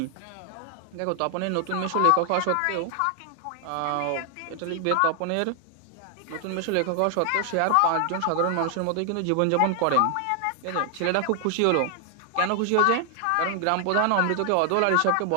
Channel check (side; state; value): both; different; correlation 0.00